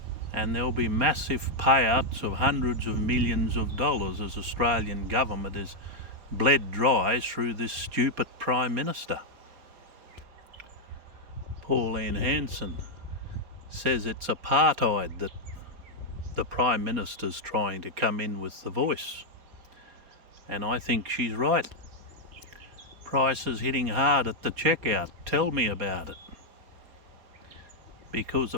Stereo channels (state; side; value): late; left; 4.3 ms